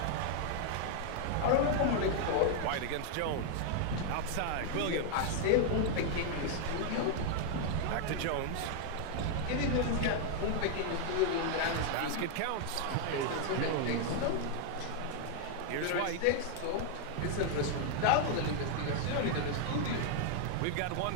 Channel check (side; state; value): both; different; correlation 0.00